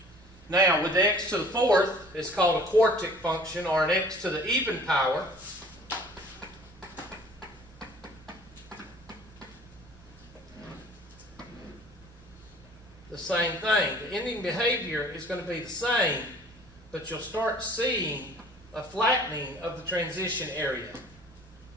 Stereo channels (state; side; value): normal; both; correlation 0.51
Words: Now, with the x to the fourth, it's called a quartet function, or an x to the even power. The same thing. The ending behavior is going to be the same, but you'll start seeing a flattening of the transition area.